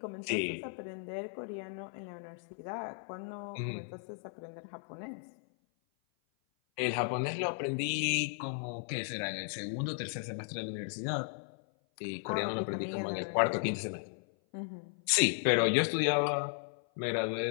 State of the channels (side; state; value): right; silent; 54 dB below the other